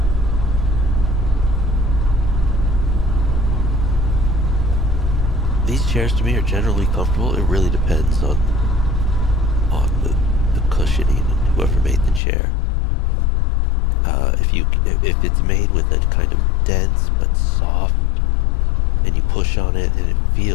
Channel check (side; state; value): right; drops out; at 12.2 s